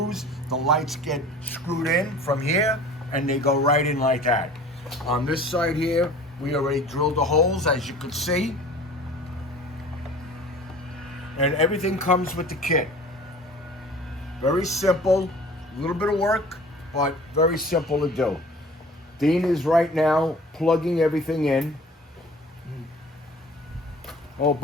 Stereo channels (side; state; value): both; normal; correlation 0.45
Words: The lights get screwed in from here and they go right in like that. On this side here, we already drilled the holes, as you can see. And everything comes with the kit. Very simple, a little bit of work, but very simple to do. Dean is right now plugging everything in. Oh,